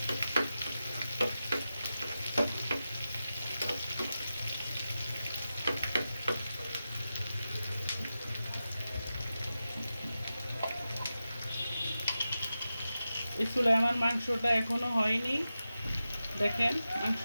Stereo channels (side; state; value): both; inverted; correlation -0.92